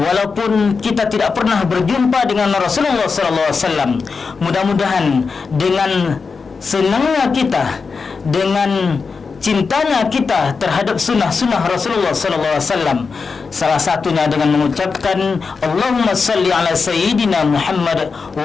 kita tidak pernah berjumpa dengan Rasulullah sallallahu alaihi wasallam, mudah-mudahan dengan senangnya kita, dengan cintanya kita terhadap sunnah-sunnah Rasulullah sallallahu alaihi wasallam, salah satunya dengan mengucapkan Allahumma salli ala Sayyidina Muhammad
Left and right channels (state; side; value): quieter; right; 4.9 dB